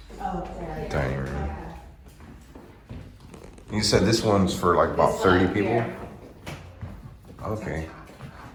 dining room. You said this one's for like about 30 people? Okay.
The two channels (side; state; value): both; identical; correlation 1.00